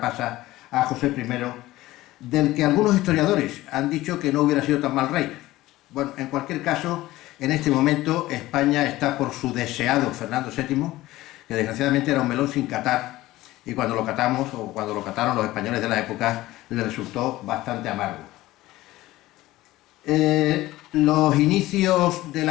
pasa a José I, del que algunos historiadores han dicho que no hubiera sido tan mal rey. Bueno, en cualquier caso, en este momento España está por su deseado Fernando VII, que desgraciadamente era un melón sin catar, y cuando lo catamos, o cuando lo cataron los españoles de la época, le resultó bastante amargo. Los inicios de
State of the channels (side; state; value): right; quieter; 17.1 dB